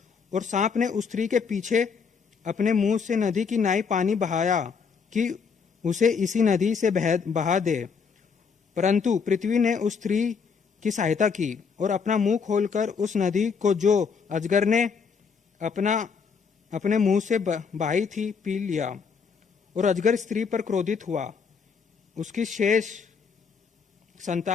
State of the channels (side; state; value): right; quieter; 5.8 dB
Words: और सांप ने उस स्त्री के पीछे अपने मुंह से नदी की नाई पानी बहाया कि उसे इसी नदी से बहा दे, परंतु पृथ्वी ने उस स्त्री की सहायता की और अपना मुंह खोलकर उस नदी को जो अजगर ने अपने मुंह से बहाई थी पी लिया। और अजगर स्त्री पर क्रोधित हुआ, उसकी शेष